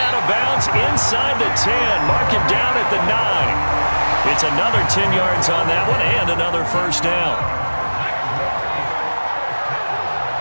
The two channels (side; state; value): both; inverted; correlation -1.00